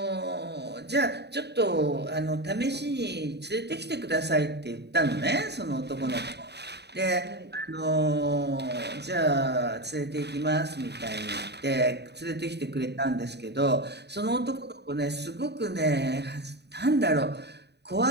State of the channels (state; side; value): late; left; 0.49 ms